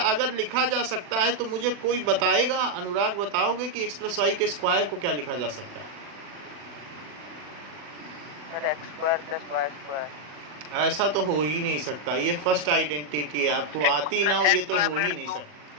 लिखा जा सकता है तो मुझे कोई बताएगा, अनुराग बताओगे कि x प्लस वाई के स्क्वायर को क्या लिखा जा सकता है? Sir x square plus Y square. ऐसा तो हो ही नहीं सकता, ये फर्स्ट आइडेंटिटी है, आपको आती ना हो ये तो हो ही नहीं सकता।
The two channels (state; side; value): late; left; 40 ms